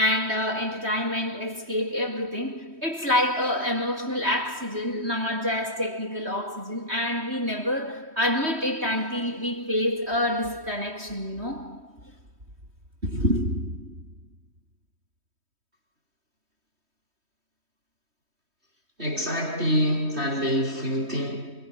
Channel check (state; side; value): late; left; 3.1 ms